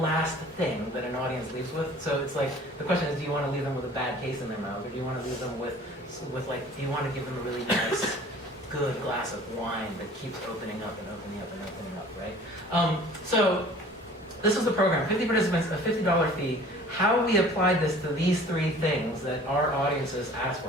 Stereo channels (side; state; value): both; normal; correlation 0.48